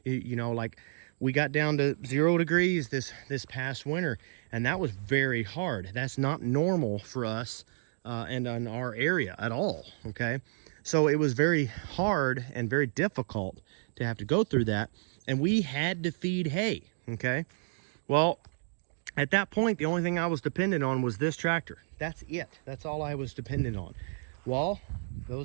You know, like we got down to 0 degrees this past winter, and that was very hard. That's not normal for us and in our area at all, okay? So it was very hard and very difficult to have to go through that, and we had to feed hay, okay? Well, at that point, the only thing I was dependent on was this tractor. That's it. That's all I was dependent on. Well,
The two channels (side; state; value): left; silent; digital silence